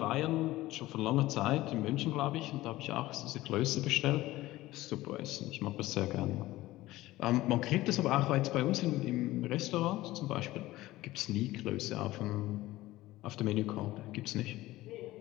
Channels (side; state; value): right; quieter; 17.2 dB